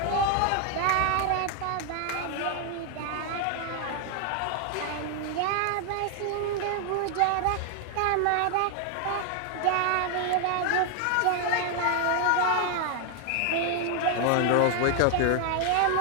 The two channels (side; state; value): both; different; correlation 0.00